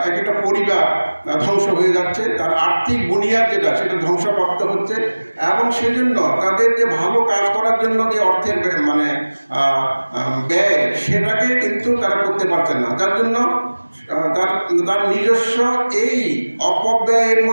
একটা পরিবার ধ্বংস হয়ে যাচ্ছে, তার আর্থিক বুনিয়াদ যেটা সেটা ধ্বংসপ্রাপ্ত হচ্ছে এবং সেজন্য তাদের যে ভালো কাজ করার জন্য যে অর্থের ব্যয় সেটাকে কিন্তু তারা করতে পারছে না, যার জন্য তার নিজস্ব এই অপব্যয়ের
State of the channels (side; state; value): both; inverted; correlation -1.00